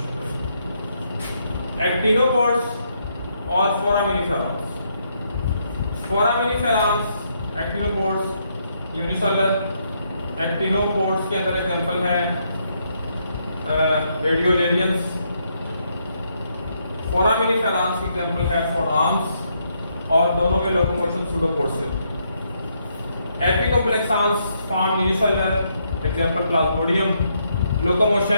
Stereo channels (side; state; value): both; inverted; correlation -0.76